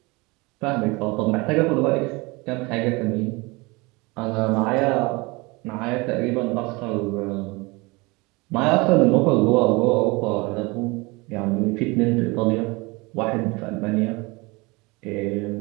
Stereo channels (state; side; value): quieter; left; 25.2 dB